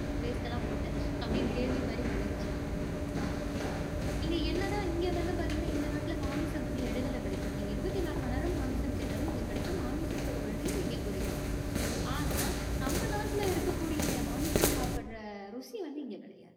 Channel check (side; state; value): both; identical; correlation 1.00